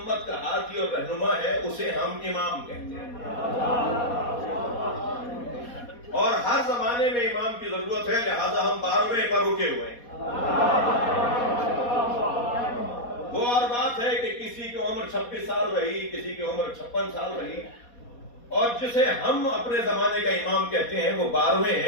کا ہادی اور رہنما ہے اسے ہم امام کہتے ہیں، اور ہر زمانے میں امام کی ضرورت ہے، لہذا ہم 12ویں پر رکے ہوئے ہیں۔ وہ اور بات ہے کہ کسی کی عمر 26 سال رہی، کسی کی عمر 56 سال رہی، اور جسے ہم اپنے زمانے کا امام کہتے ہیں وہ 12ویں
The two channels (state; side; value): late; right; 4.2 ms